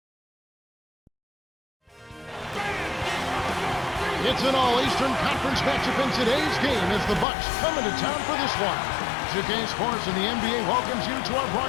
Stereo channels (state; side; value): drops out; right; at 7.2 s